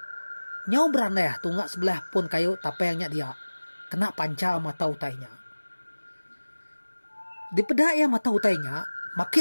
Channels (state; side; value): inverted; both; correlation -1.00